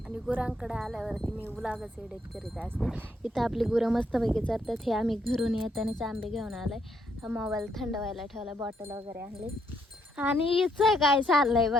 आणि गुरांकडे आल्यावरती मी व्लॉगच एडिट करीत असते. इथं आपली गुरं मस्तपैकी चरतात. हे आम्ही घरून येतानाच आंबे घेऊन आलोय. हा मोबाईल थंड व्हायला ठेवला, बॉटल वगैरे आणली. आणि हिचं काय चाललंय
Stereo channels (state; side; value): normal; both; correlation 0.74